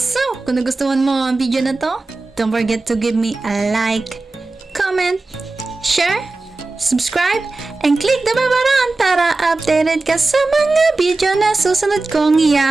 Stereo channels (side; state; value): left; quieter; 3.4 dB